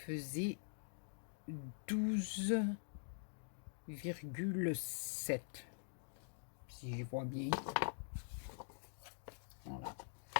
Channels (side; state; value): right; silent; digital silence